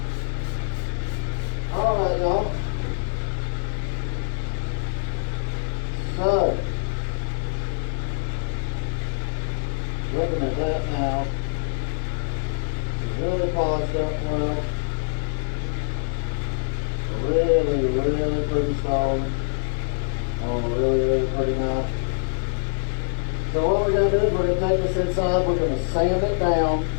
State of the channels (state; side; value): silent; right; 62 dB below the other